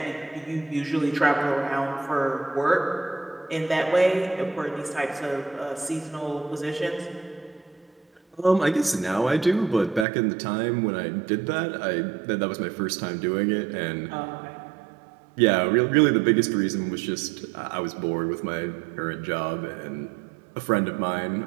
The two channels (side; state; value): left; drops out; at 10.1 s